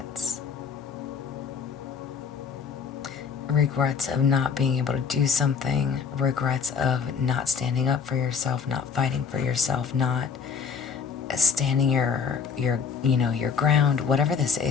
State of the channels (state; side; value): quieter; right; 6.2 dB